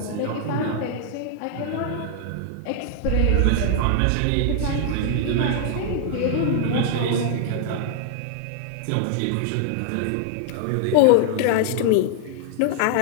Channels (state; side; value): different; both; correlation 0.00